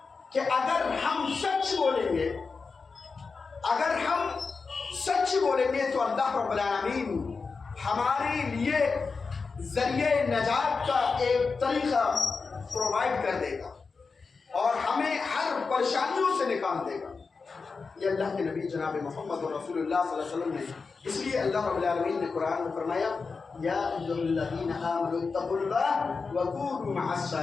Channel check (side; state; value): right; quieter; 4.7 dB